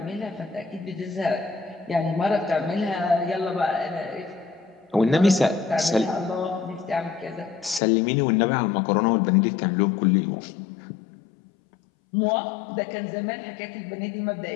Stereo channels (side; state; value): right; drops out; at 7.8 s